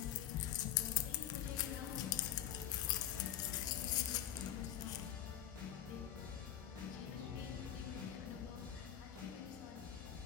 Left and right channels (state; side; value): quieter; right; 10.9 dB